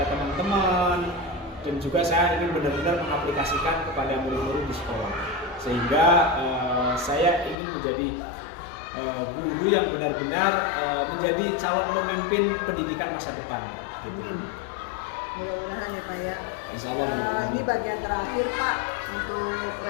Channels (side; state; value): right; drops out; at 7.6 s